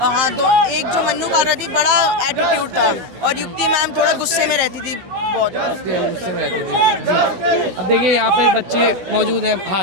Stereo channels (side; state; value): left; late; 16 ms